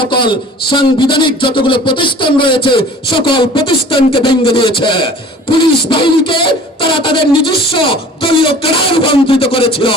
সাংবিধানিক যতগুলো প্রতিষ্ঠান রয়েছে সকল প্রতিষ্ঠানকে ভেঙে দিয়েছে। পুলিশ বাহিনীকে তারা তাদের নিজস্ব দলীয় ক্যাডারে রূপান্তরিত করেছিল।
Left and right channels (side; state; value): both; normal; correlation 0.46